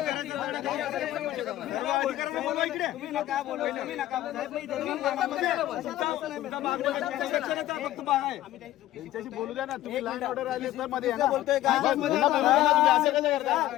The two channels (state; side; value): quieter; right; 14.4 dB